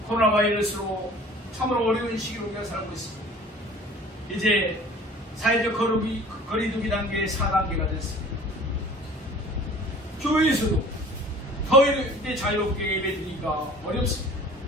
코로나 바이러스로 참으로 어려운 시기로 우리가 살고 있습니다. 이제 사회적 거리두기 단계 4단계가 됐습니다. 교회에서도 더 이제 자유롭게 예배드리기가 어렵습니다.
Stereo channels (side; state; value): both; normal; correlation 0.47